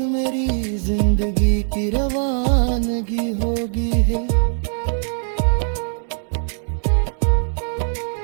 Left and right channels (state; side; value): silent; left; digital silence